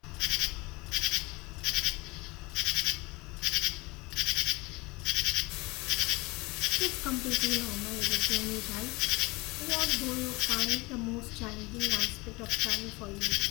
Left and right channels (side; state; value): right; quieter; 24.1 dB